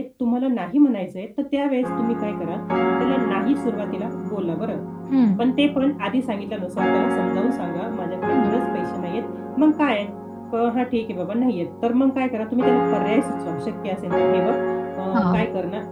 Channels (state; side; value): identical; both; correlation 1.00